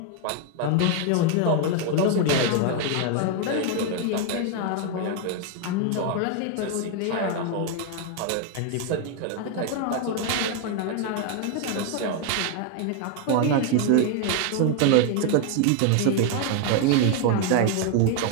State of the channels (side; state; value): both; different; correlation 0.01